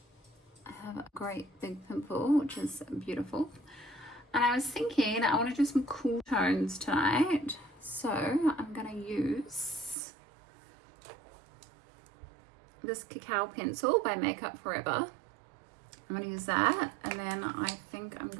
I have a great big pimple, which is beautiful. And I was thinking I want to do some cool tones tonight, so I'm gonna use this cacao pencil by Makeup Forever. I'm gonna use that, and then I think I'm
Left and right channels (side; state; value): left; drops out; at 10.0 s